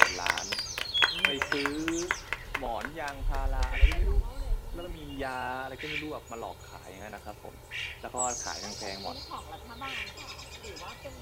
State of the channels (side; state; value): both; identical; correlation 1.00